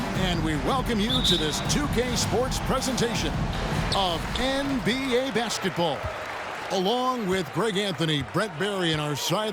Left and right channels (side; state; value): both; identical; correlation 1.00